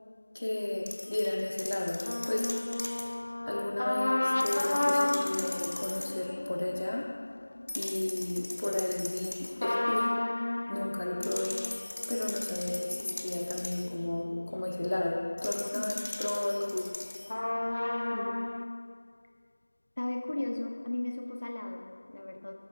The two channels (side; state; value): both; inverted; correlation -1.00